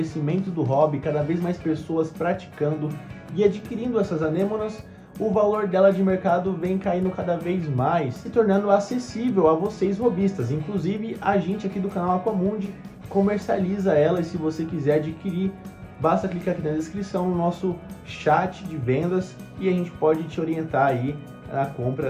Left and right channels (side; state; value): both; identical; correlation 1.00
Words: do hobby, cada vez mais pessoas praticando e adquirindo essas anêmonas, o valor dela de mercado vem caindo cada vez mais, se tornando acessível a vocês hobbyistas. Inclusive, a gente aqui do canal Aquamundi comercializa ela, e se você quiser adquirir, basta clicar aqui na descrição no nosso chat de vendas e a gente pode te orientar aí na